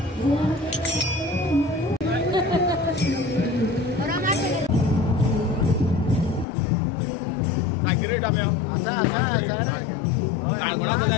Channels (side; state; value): right; drops out; at 6.5 s